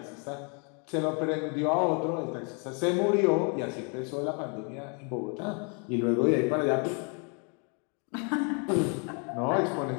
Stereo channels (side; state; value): right; quieter; 36.9 dB